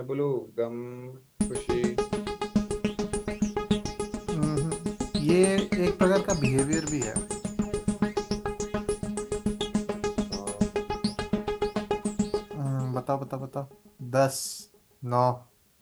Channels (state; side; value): identical; both; correlation 1.00